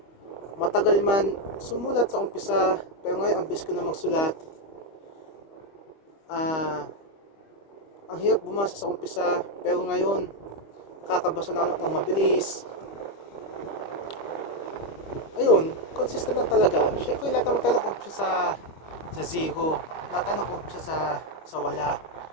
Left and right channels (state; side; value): late; right; 25 ms